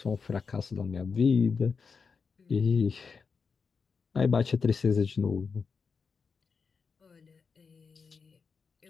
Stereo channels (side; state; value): right; quieter; 5.4 dB